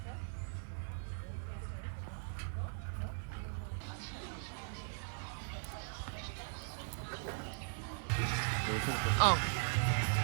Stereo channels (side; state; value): left; silent; 51 dB below the other